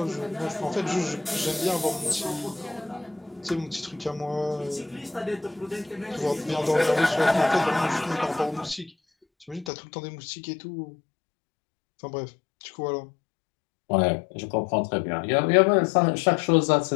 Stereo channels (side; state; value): right; drops out; at 9.7 s